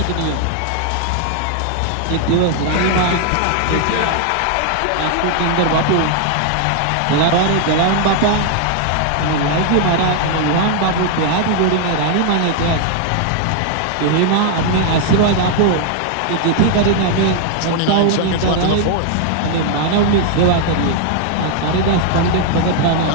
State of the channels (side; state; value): both; different; correlation 0.00